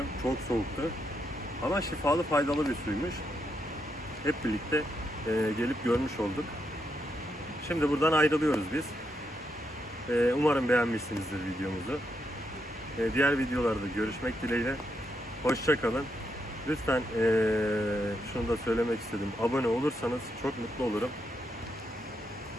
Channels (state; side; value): normal; both; correlation 0.81